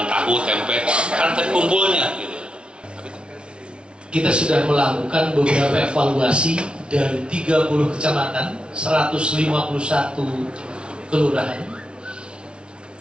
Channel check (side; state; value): left; late; 0.057 ms